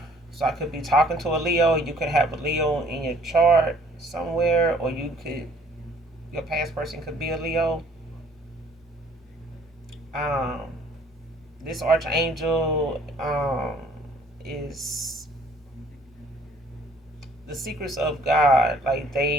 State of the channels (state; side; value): normal; both; correlation 0.58